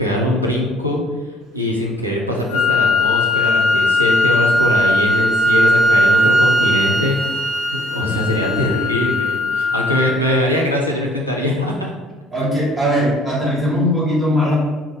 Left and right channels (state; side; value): normal; both; correlation 0.62